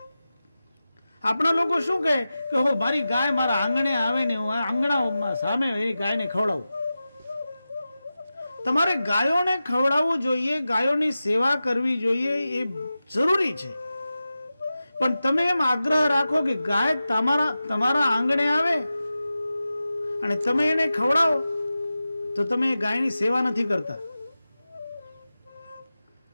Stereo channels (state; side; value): inverted; both; correlation -0.94